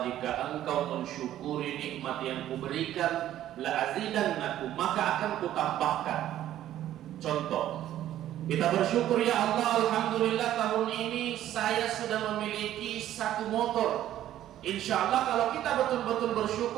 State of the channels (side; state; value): left; quieter; 12.5 dB